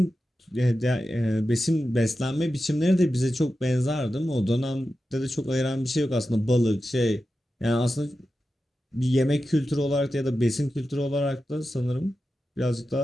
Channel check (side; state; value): both; normal; correlation 0.92